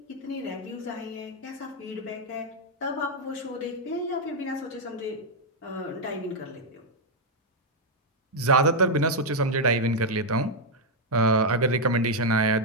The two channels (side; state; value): both; normal; correlation -0.01